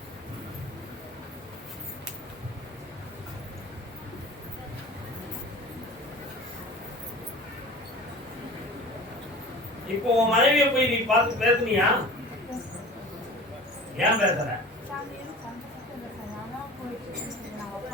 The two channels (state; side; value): normal; both; correlation 0.40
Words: இப்போ உன் மனைவியை போய் நீ பார்த்து பேசுனியா? ஏன் பேசுற?